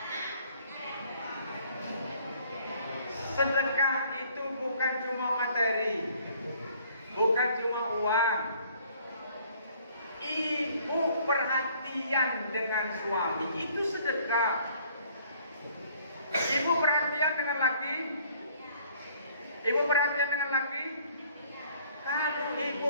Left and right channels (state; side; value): inverted; both; correlation -0.59